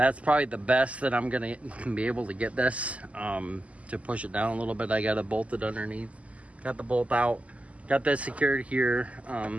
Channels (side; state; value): left; late; 0.066 ms